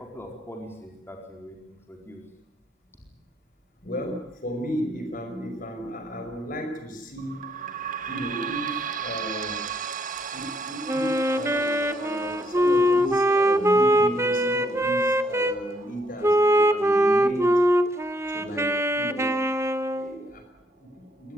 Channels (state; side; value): normal; both; correlation 0.71